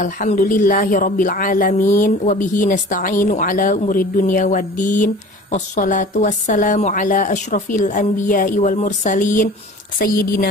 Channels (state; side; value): normal; both; correlation 0.43